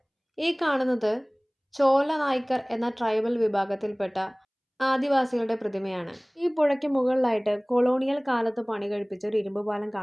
ഈ കാണുന്നത് ചോല നായ്ക്കർ എന്ന ട്രൈബൽ വിഭാഗത്തിൽപ്പെട്ട ആദിവാസികളുടെ പ്രതിമയാണ്. ഈ പുഴയ്ക്ക് മുകളിലായിട്ട് കൊളോണിയൽ കാലത്ത് പണി കഴിപ്പിച്ച ഒരു ഇരുമ്പ് പാലം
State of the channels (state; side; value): identical; both; correlation 1.00